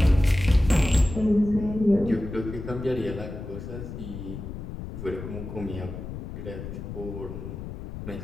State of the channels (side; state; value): left; noise; rumble, 9 dB below the sound